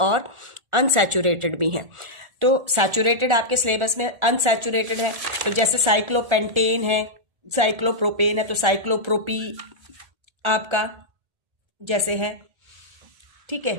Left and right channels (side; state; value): left; late; 1.4 ms